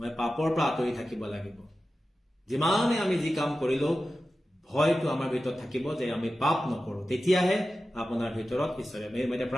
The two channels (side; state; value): both; normal; correlation 0.94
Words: পাপৰ পৰা আঁতৰি থাকিব লাগিব যিমানে আমি যি কাম কৰিলো ভয়টো আমাৰ ভিতৰত থাকিব যে আমি পাপ নকৰো তেতিয়াহে আপোনাৰ ভিতৰত ঈশ্বৰে মই এতিয়া